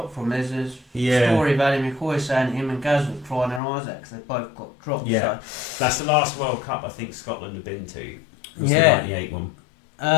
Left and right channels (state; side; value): drops out; right; at 3.6 s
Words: from. There's a story of Ali McCoy saying him and Gaz were crying their eyes out because they both got dropped. Yeah, so. That's the last World Cup I think Scotland have been to. Was the '98